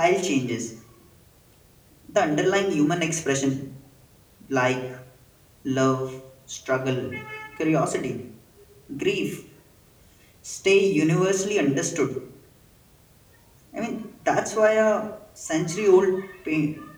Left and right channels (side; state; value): both; identical; correlation 1.00